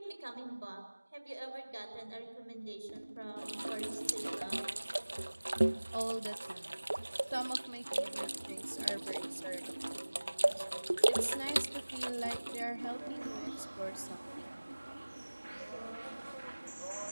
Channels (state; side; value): inverted; both; correlation -1.00